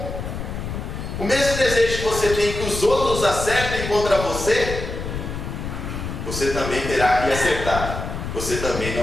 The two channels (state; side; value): noise; left; rumble, 6 dB below the sound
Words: o mesmo desejo que você tem que os outros acertem contra você, você também terá que acertar. Você também